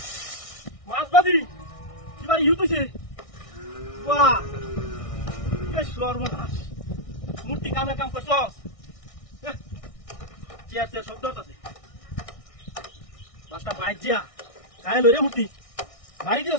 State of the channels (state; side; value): late; right; 1.6 ms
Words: মাছবাজি এবার ইউতুছে বাহ বেশ সর্বনাশ মূর্তি কামের কাম করছস চেয়ার চেয়ার শব্দ আছে পাঁচটা বাইক যা গায়ে লইরে মূর্তি বাড়ি দিস